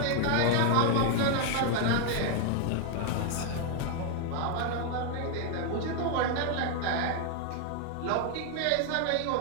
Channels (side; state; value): both; different; correlation 0.00